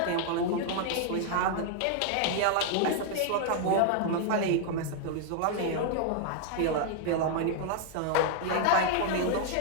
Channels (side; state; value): both; different; correlation 0.00